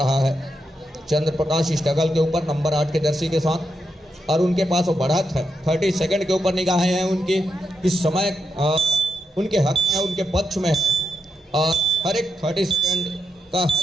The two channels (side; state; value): both; normal; correlation 0.85